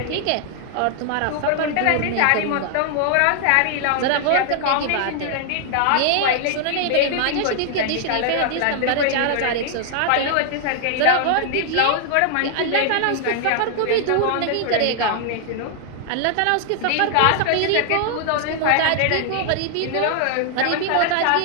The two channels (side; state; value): both; different; correlation 0.00